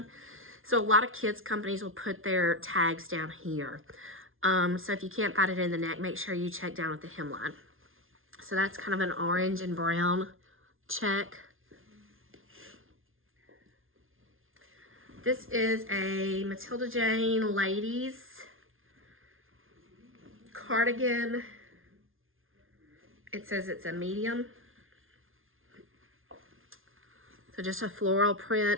So a lot of kids companies will put their tags down here. So if you can't find it in the neck, make sure you check down at the hemline. So that's kind of an orange and brown check. This is a Matilda Jane ladies cardigan. It says it's a medium. So just a floral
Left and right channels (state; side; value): late; left; 0.60 ms